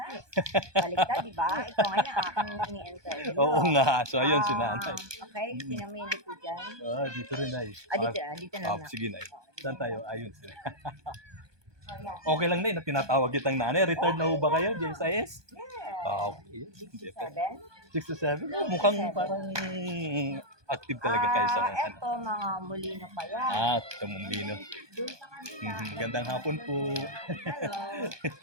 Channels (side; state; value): left; late; 1.2 ms